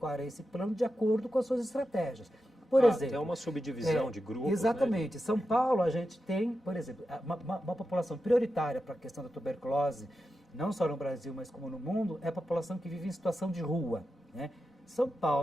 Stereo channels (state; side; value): normal; both; correlation 0.90